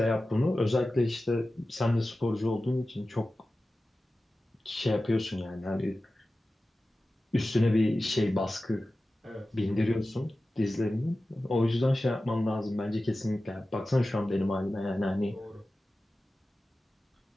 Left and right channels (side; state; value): both; normal; correlation 0.95